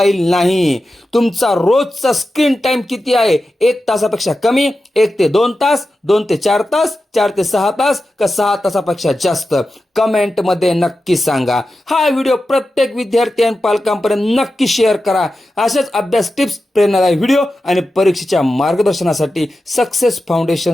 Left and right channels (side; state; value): both; normal; correlation 0.92